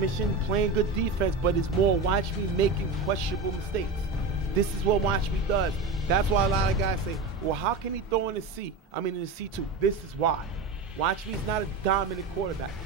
playing good defense, but it's more watch me making questionable mistakes. This is what watch me does. That's why a lot of guys say, well, how can he throw in the C2? This is why. Watch me is not a dominant quarterback.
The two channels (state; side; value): quieter; left; 3.7 dB